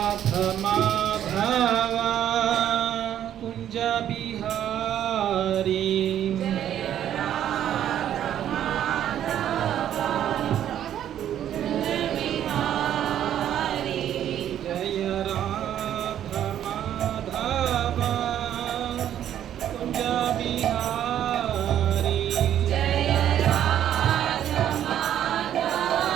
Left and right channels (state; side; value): quieter; left; 10.7 dB